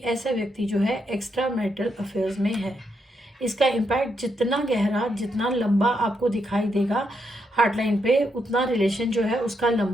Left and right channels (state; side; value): normal; both; correlation 0.80